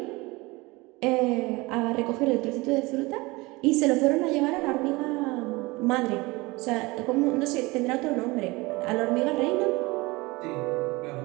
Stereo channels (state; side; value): quieter; left; 23.1 dB